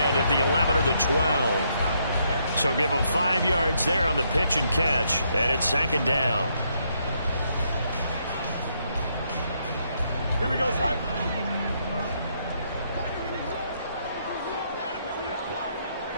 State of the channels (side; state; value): both; inverted; correlation -0.74